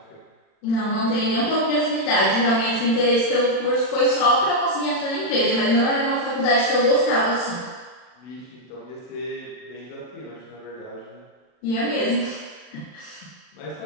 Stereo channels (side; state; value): right; late; 40 ms